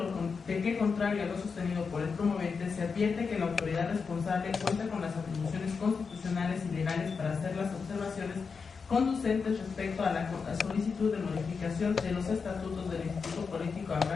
que, contrario a lo sostenido por el promovente, se advierte que la autoridad responsable cuenta con las atribuciones constitucionales y legales para hacer las observaciones conducentes respecto a la solicitud de modificación de los estatutos del Instituto Político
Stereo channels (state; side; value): quieter; right; 5.3 dB